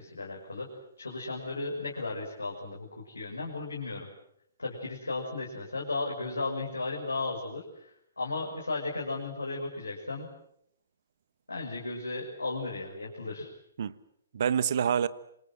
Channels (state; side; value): inverted; both; correlation -0.73